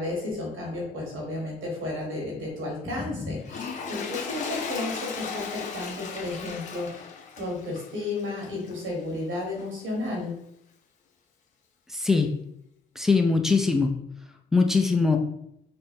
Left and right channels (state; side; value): quieter; right; 3.4 dB